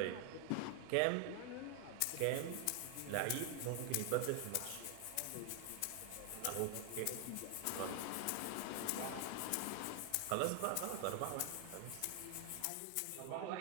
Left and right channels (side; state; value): both; different; correlation 0.00